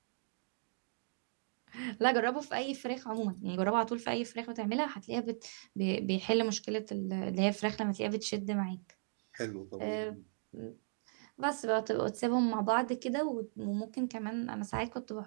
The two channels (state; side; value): silent; left; digital silence